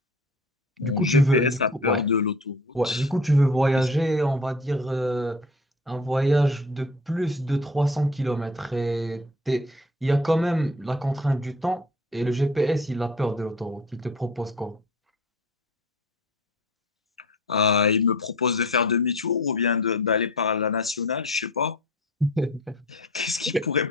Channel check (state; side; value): normal; both; correlation 0.42